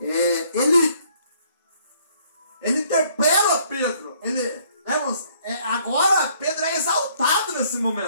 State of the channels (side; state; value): both; inverted; correlation -0.63